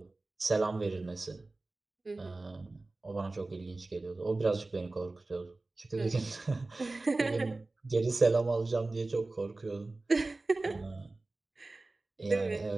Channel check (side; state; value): left; quieter; 3.1 dB